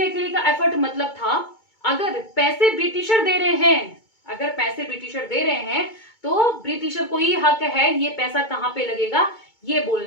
अकेले का एफर्ट। मतलब था अगर पैसे ब्रिटिशर दे रहे हैं, अगर पैसे ब्रिटिशर दे रहे हैं तो ब्रिटिशर को ही हक है ये पैसा कहाँ पे लगेगा ये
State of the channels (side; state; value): right; late; 2.2 ms